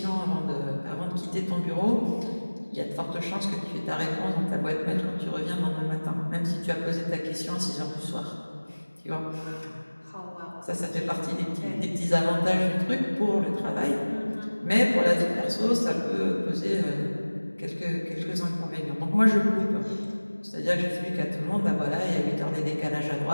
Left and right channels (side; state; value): both; inverted; correlation -1.00